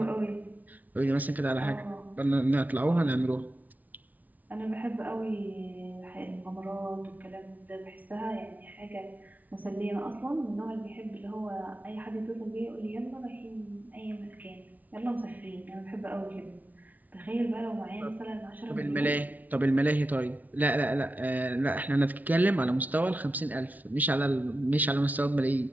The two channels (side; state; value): left; late; 0.077 ms